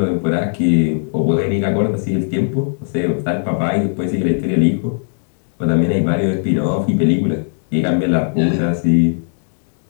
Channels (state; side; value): silent; right; digital silence